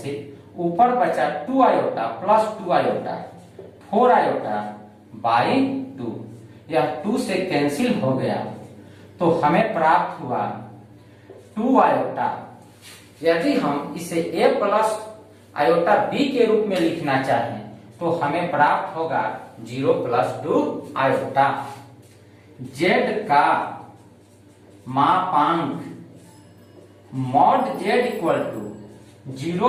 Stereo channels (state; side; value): identical; both; correlation 1.00